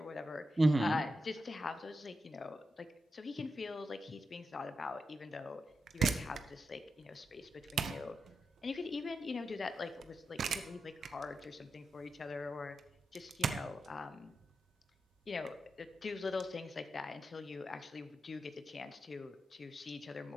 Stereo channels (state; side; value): normal; both; correlation 0.87